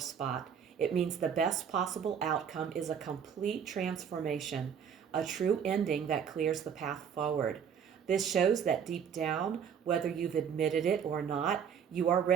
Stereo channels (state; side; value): quieter; left; 7.6 dB